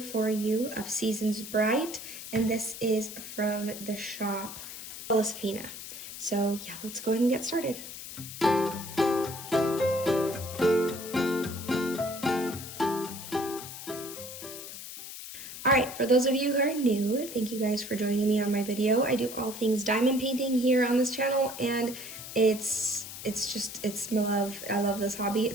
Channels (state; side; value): noise; left; hiss, 11 dB below the sound